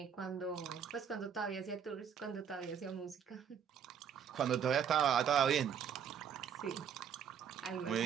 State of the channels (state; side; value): quieter; left; 7.9 dB